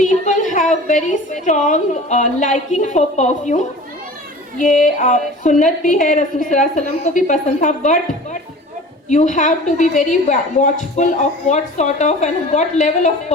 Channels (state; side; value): normal; both; correlation 0.40